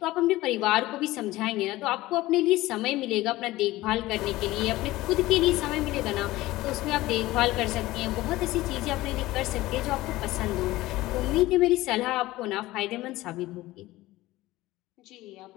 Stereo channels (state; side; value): quieter; right; 17.8 dB